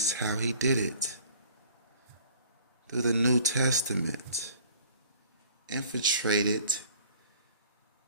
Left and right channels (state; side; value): inverted; both; correlation -0.51